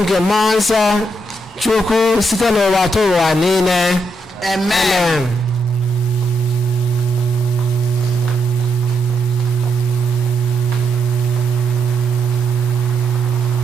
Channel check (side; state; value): both; normal; correlation 0.80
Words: nke mmụọ nsọ Chukwu site n'ụwa ta ụwa niile. Amen.